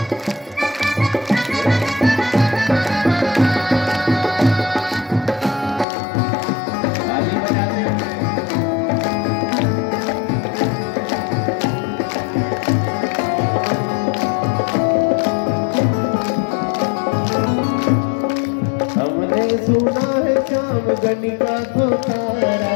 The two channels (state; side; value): drops out; right; at 5.9 s